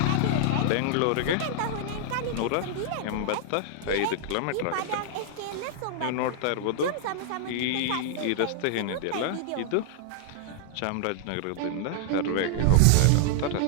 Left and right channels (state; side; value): different; both; correlation -0.01